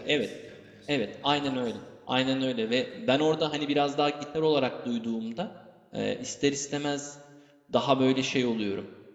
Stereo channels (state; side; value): identical; both; correlation 1.00